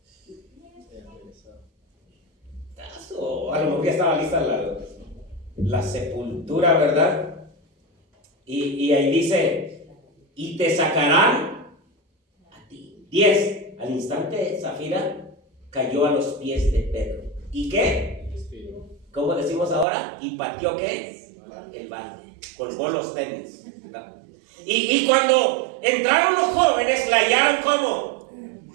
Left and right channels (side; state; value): left; drops out; at 19.9 s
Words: O a lo mejor ya estaba lista la sepultura, ¿verdad? Y ahí dice, y te sacarán 10. Al instante Zafira cayó a los pies de Pedro. ¿Y qué? ¿Cómo decimos ahora? ¿Y pateó qué? El balde. Colgó los tenis. Y cuando entraron los jóvenes, la hallaron como